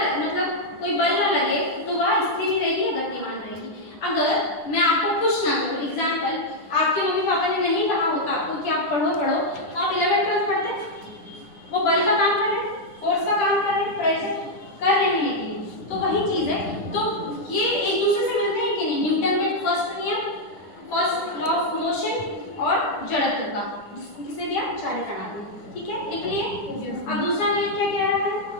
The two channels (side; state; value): right; late; 10 ms